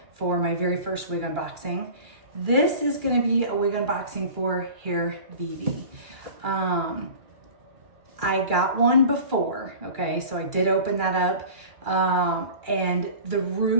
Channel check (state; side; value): late; left; 2.3 ms